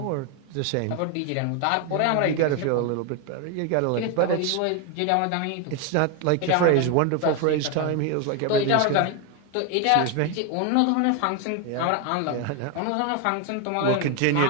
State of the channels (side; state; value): both; different; correlation 0.01